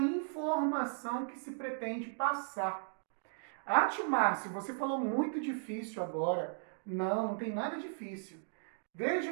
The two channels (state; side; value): silent; left; digital silence